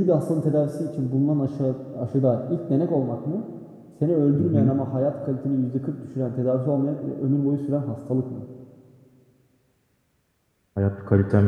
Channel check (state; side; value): identical; both; correlation 1.00